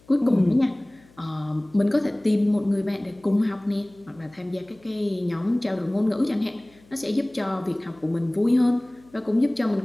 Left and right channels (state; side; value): noise; left; hum, 28 dB below the sound